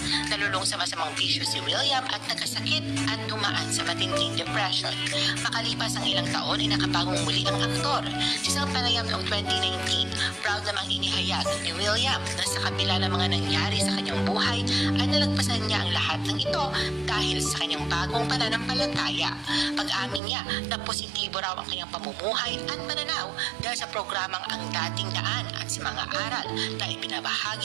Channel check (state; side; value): drops out; left; at 20.2 s